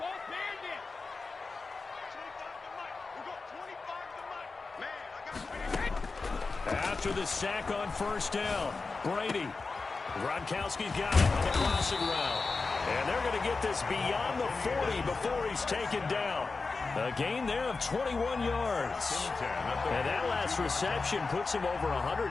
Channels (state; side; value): quieter; right; 4.1 dB